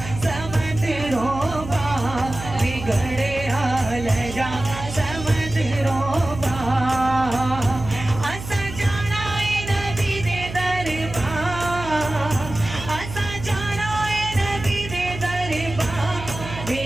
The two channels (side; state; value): right; noise; hum, 10 dB below the sound